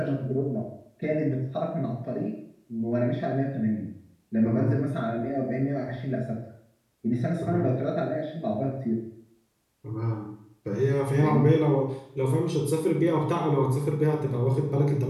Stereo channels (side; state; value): both; identical; correlation 1.00